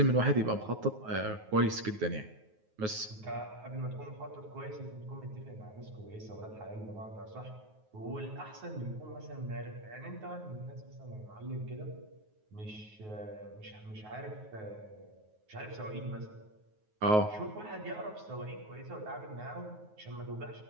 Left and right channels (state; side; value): late; left; 9.4 ms